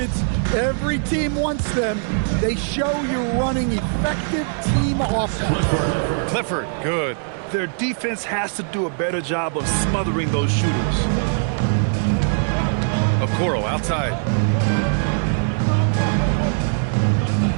Every team wants them. They show you're running effective team offense. Clifford, good. Their defense has to do a better job of smothering those shooters. Okoro outside.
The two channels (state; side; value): silent; left; 65 dB below the other